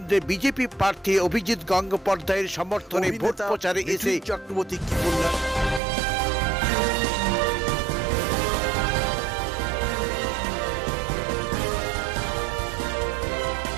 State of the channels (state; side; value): drops out; left; at 5.8 s